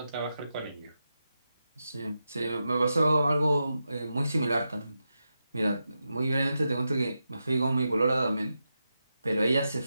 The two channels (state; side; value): inverted; both; correlation -0.88